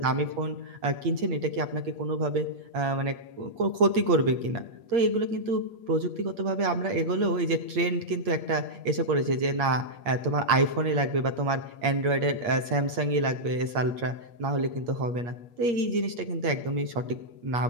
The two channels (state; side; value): late; left; 8.5 ms